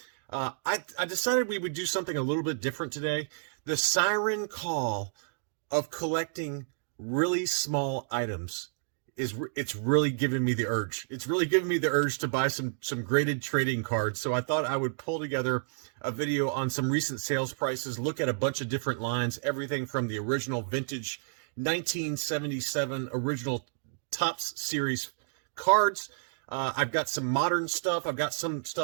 I decided we would do something a little bit different today. The siren call of collecting really small items it's really giving me the urge. It's really giving me the urge to buy some graded trading cards. So I thought I would pull together a video on some recent sales prices, look at a bunch of different lines, everything from the original vintage 1977 original Topps series cards. I've got some modern stuff. I've got some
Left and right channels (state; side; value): silent; left; digital silence